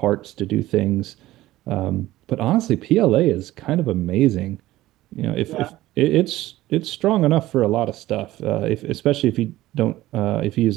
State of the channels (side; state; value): left; quieter; 16.2 dB